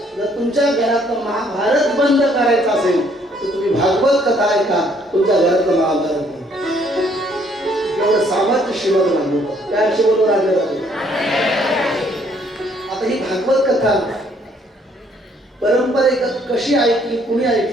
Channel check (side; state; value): both; normal; correlation 0.65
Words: जर तुमच्या घरातलं महाभारत बंद करायचं असेल तर तुम्ही भागवत कथा ऐका, तुमच्या घरातलं महाभारत बंद. एवढं सामर्थ्य श्रीमद भागवत काय शिवलो राजा. आता ही भागवत कथा परंपरेगत कशी ऐकली, कुणी